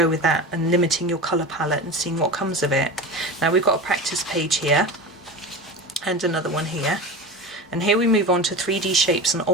with that and limiting your colour palette and seeing what comes of it. Now we've got a practice page here and another one here, and here we move on to 3D shapes and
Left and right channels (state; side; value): normal; both; correlation 0.29